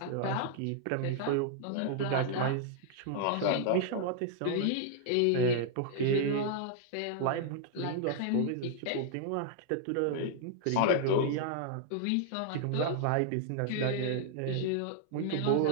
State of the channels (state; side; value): different; both; correlation -0.01